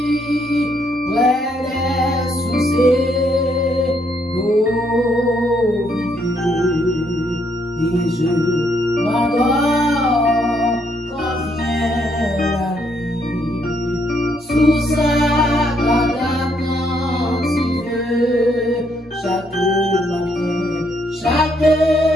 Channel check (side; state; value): both; normal; correlation 0.73